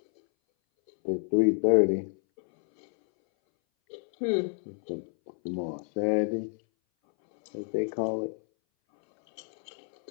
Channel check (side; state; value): right; silent; 59 dB below the other